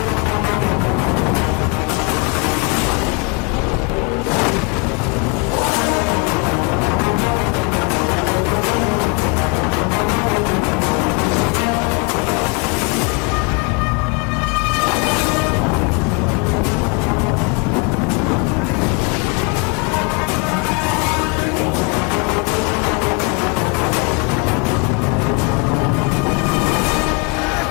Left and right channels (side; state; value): right; quieter; 32.0 dB